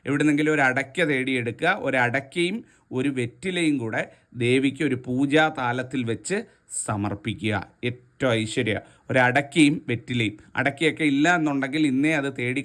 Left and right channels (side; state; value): both; identical; correlation 1.00